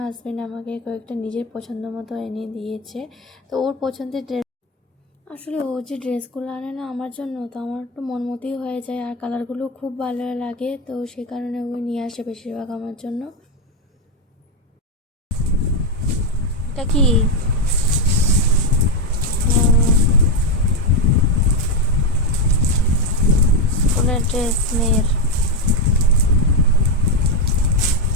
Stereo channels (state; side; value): normal; both; correlation 0.07